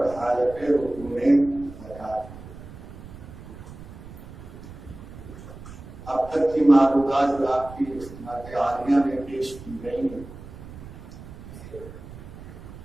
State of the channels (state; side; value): noise; right; rumble, 15 dB below the sound